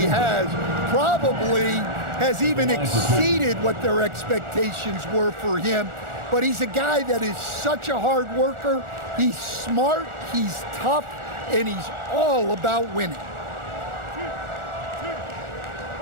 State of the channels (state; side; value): late; left; 1.4 ms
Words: Probably has even exceeded what their expectations were for him. But he's a guy that is such a hard worker. He's smart, he's tough, and he's all about winning.